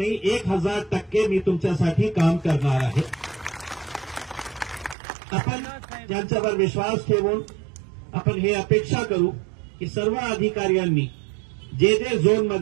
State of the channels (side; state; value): left; drops out; at 5.0 s